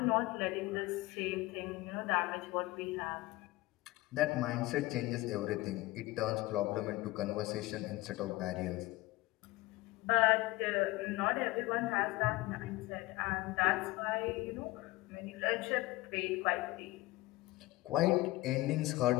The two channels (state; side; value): quieter; right; 19.5 dB